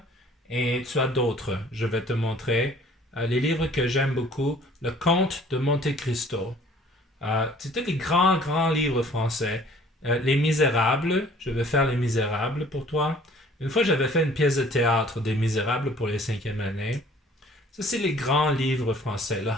Et tu as d'autres, je vais te montrer. Les livres que j'aime beaucoup, Le Comte de Monte Cristo. C'était des grands livres français. Les Misérables, je vais faire Les Misérables pour toi. Une fois, j'avais fait une pièce de théâtre des Misérables pour les 5e années. Ça, c'est les grands livres français. Le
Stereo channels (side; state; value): both; normal; correlation 0.54